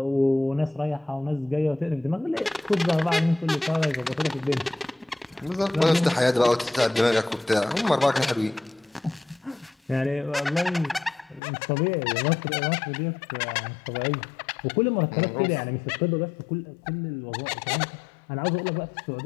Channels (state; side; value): drops out; right; at 11.4 s